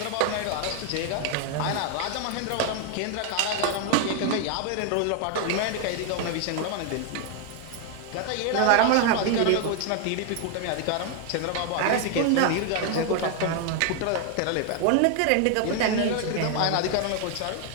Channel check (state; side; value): different; both; correlation 0.00